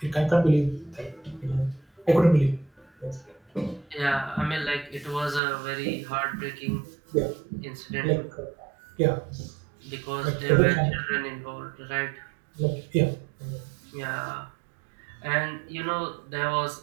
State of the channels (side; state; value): left; drops out; at 5.4 s